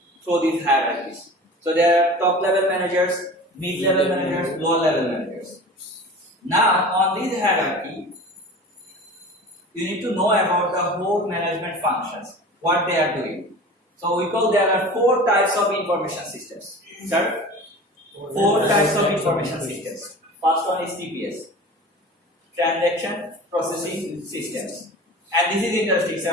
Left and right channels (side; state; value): both; normal; correlation 0.37